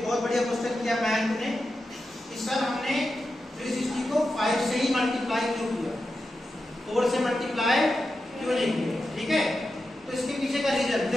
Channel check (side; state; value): both; normal; correlation 0.90